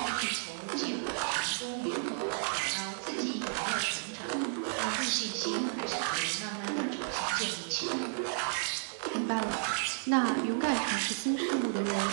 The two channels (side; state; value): left; silent; 56 dB below the other